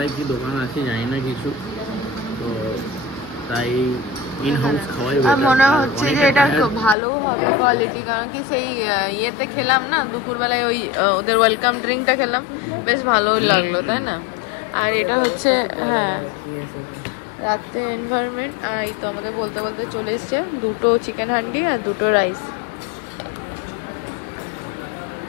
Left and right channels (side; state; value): right; drops out; at 7.0 s